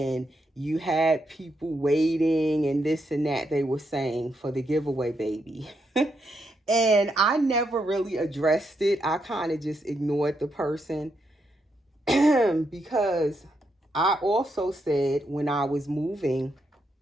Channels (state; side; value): normal; both; correlation 0.80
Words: you had people waiting and this and that, they were saying, for the giveaway baby. And I never really addressed it. I kind of just ignored the person because I also said when I was moving